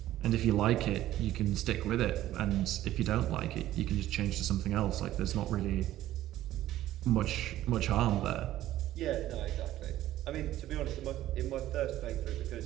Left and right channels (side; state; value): left; quieter; 14.0 dB